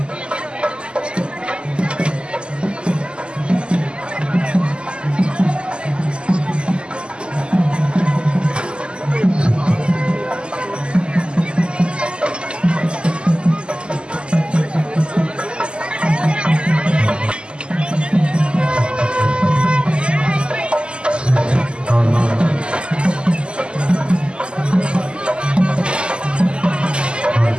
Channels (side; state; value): left; late; 0.051 ms